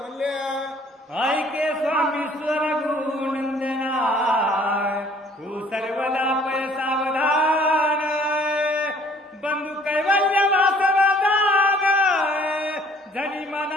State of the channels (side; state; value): both; normal; correlation 0.57